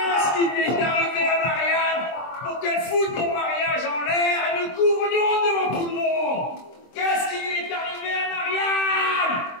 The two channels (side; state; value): right; late; 23 ms